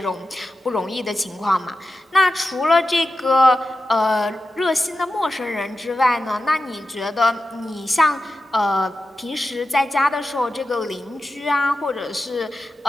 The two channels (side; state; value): both; normal; correlation 0.91